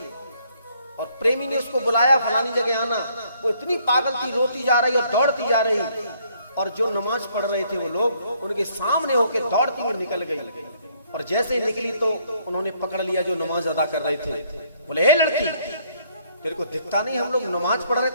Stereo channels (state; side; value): inverted; both; correlation -0.66